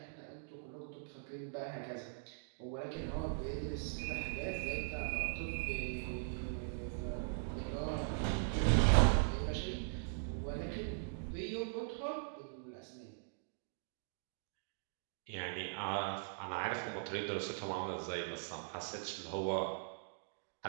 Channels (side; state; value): left; silent; digital silence